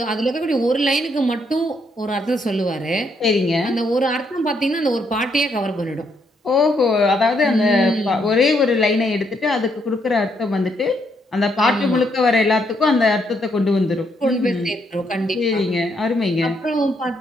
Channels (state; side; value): normal; both; correlation 0.74